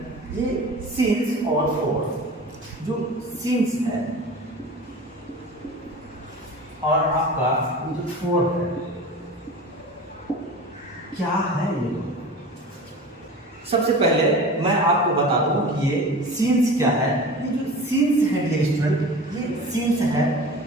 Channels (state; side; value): normal; both; correlation 0.36